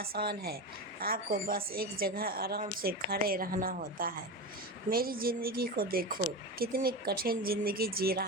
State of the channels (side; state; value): both; normal; correlation 0.23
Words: है। आपको बस एक जगह आराम से खड़े रहना होता है। मेरी ज़िंदगी को देखो, कितनी कठिन ज़िंदगी जी